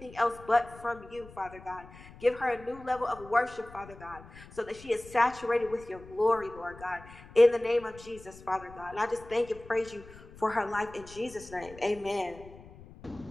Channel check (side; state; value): left; noise; rumble, 19 dB below the sound